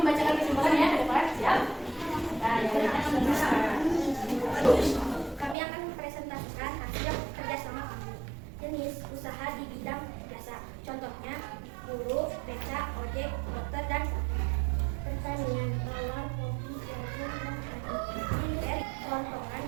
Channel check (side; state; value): left; drops out; at 5.6 s